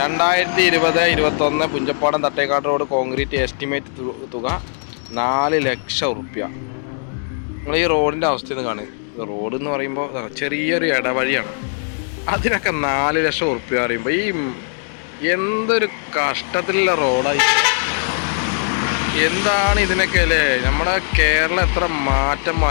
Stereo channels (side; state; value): right; silent; digital silence